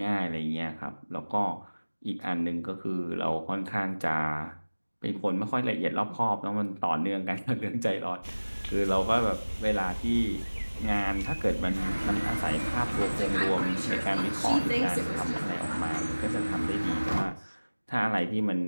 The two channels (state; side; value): inverted; both; correlation -1.00